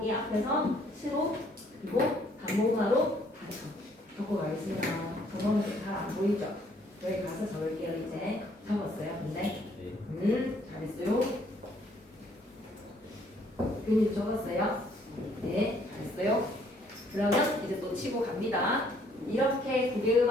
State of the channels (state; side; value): normal; both; correlation 0.64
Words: 앞에서 시로 그리고 단모사로 다쳐. 적고 가겠습니다. 저거는 잘 안 보이죠? 여기 가서 적을게요. 이제 적었어요. 근데 잘했어요. 근이 적었어요. 네, 잘했어요. 그러면 이제 또 치고 갑니다. 이렇게